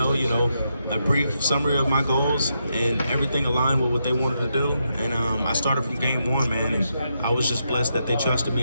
a brief summary of my goals, and everything aligned with what they wanted to do. And I started from game one, man, and I was just blessed that they trusted me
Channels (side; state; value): both; inverted; correlation -0.82